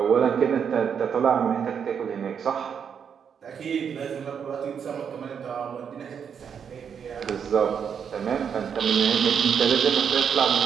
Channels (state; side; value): quieter; left; 7.3 dB